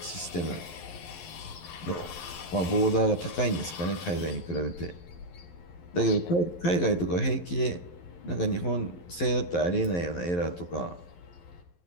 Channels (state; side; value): late; right; 11 ms